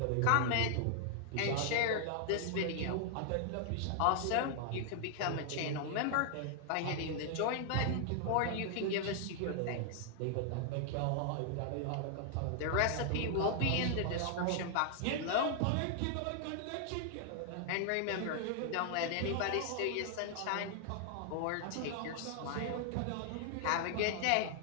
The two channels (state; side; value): different; both; correlation 0.00